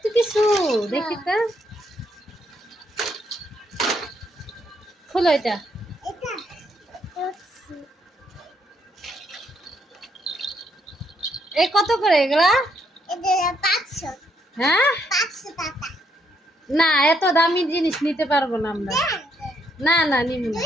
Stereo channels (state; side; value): normal; both; correlation 0.73